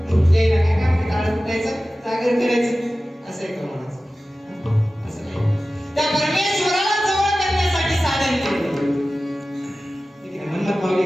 यायला काय काम आहे? टाळ फुटायचं जागर करायचं असं एक म्हणायचं असं नाही त्या परमेश्वराला जवळ करण्यासाठी साधन केलं मनमत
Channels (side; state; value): both; normal; correlation 0.96